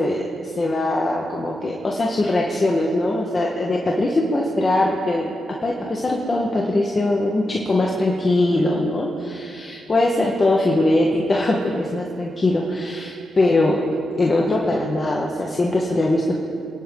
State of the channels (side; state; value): both; normal; correlation 0.89